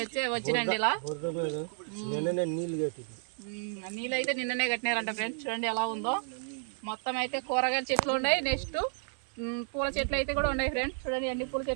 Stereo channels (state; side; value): silent; left; 57 dB below the other